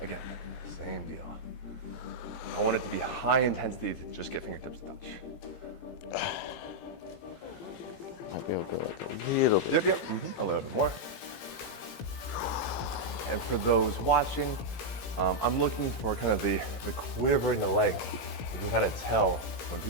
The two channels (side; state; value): right; late; 17 ms